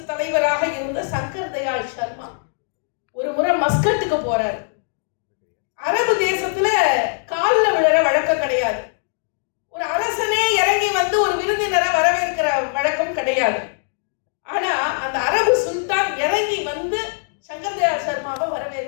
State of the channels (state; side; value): silent; right; digital silence